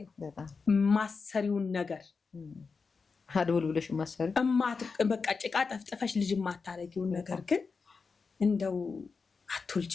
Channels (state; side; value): quieter; right; 4.9 dB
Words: ማሰሪውን ነገር አድውል ብለሽ ማሰሪ በቃ ጭቃ ጠፍጥፈሽ ልጅ ማታረጊውን ነገር ግን እንደው